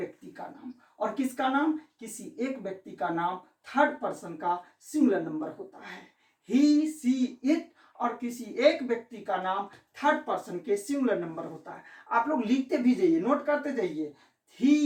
का नाम, और किसका नाम, किसी एक व्यक्ति का नाम थर्ड पर्सन का सिंगुलर नंबर होता है। ही सी इट और किसी एक व्यक्ति का नाम थर्ड पर्सन के सिंगुलर नंबर होता है। आप लोग लिखते भी जाइए, नोट करते जाइए।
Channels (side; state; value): both; identical; correlation 1.00